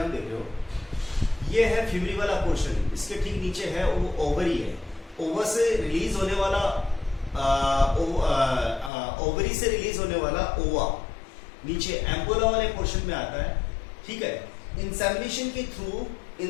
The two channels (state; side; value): drops out; right; at 8.9 s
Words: देख रहे हो. ये है फ्यूमरी वाला पोर्शन, इसके ठीक नीचे है वो ओवरी है. ओवर से रिलीज होने वाला ओवरी से रिलीज होने वाला ओवा नीचे एम्पुला वाले पोर्शन में आता है. ठीक है, इंसेमिनेशन के थ्रू